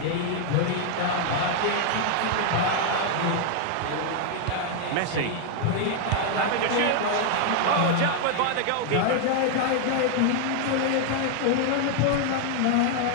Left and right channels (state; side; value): different; both; correlation 0.00